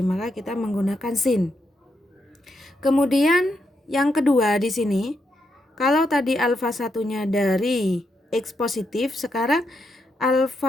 maka kita menggunakan sin. Kemudian yang kedua di sini, kalau tadi alfa satunya dari X positif, sekarang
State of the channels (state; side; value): normal; both; correlation 0.81